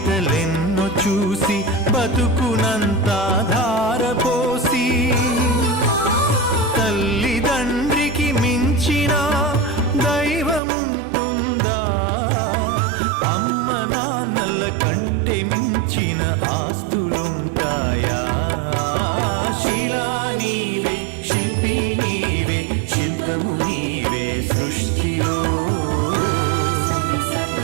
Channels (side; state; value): left; drops out; at 10.6 s